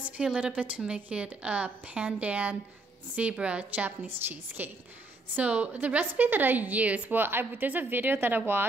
a little bit to make it a Pandan zebra Japanese cheesecake. So the recipe that I use, there's a video that I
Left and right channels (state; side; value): quieter; left; 3.1 dB